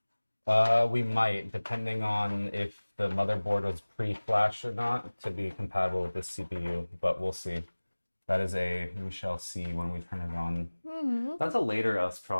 We might, depending on if the motherboard was pre-flashed or not, to be compatible with this CPU, but we'll see. That is we shall see when we turn it on. That's a later us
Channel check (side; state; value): both; inverted; correlation -1.00